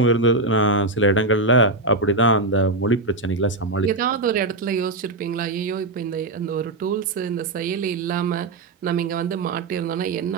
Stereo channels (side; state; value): left; quieter; 3.0 dB